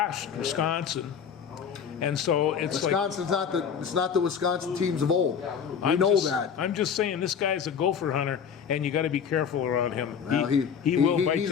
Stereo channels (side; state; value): right; quieter; 7.3 dB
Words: Wisconsin. And so it's Wisconsin's not the Wisconsin teams of old. We know that. I'm just saying this guy's a gopher hunter, and you got to be careful around him. Well, he will bite he's